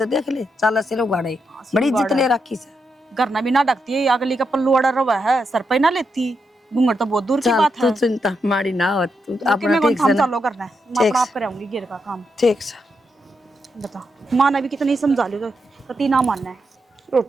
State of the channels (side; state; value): both; normal; correlation 0.83